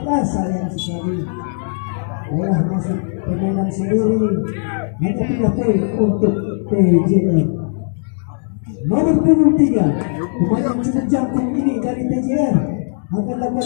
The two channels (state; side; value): silent; right; digital silence